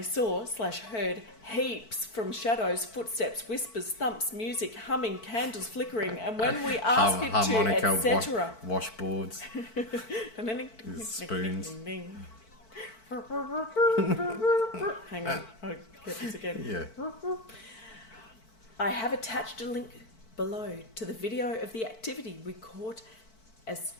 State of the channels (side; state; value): right; late; 4.5 ms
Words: saw/heard heaps from shadows, footsteps, whispers, thumps, music, humming, candles flickering. And when we asked it to, Harmonica, etc. washboards, spoons. Hang on, I'll get this again. Yeah. I have attached a link below to the video of the activity we caught, as